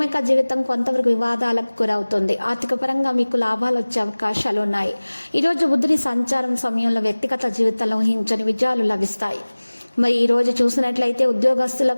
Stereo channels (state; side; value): inverted; both; correlation -1.00